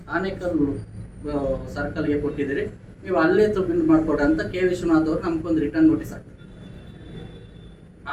ಆನೇಕಲ್ ಸರ್ಕಲ್ಗೆ ಕೊಟ್ಟಿದ್ದೀರಿ, ನೀವು ಅಲ್ಲೇ ಸಬ್ಮಿಟ್ ಮಾಡಿಕೊಡ್ರಿ ಅಂತ K. ವಿಶ್ವನಾಥ್ ಅವರು ನಮಗೊಂದು ರಿಟರ್ನ್ ನೋಟಿಸ್ ಹಾಕ್ತಾರೆ.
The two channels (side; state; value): both; identical; correlation 1.00